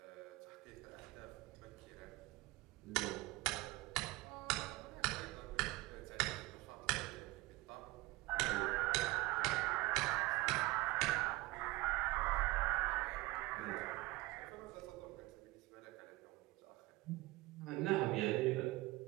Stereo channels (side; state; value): left; quieter; 20.3 dB